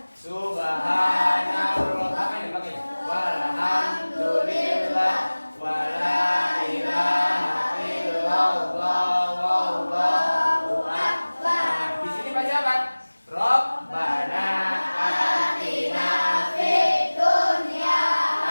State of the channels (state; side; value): inverted; both; correlation -1.00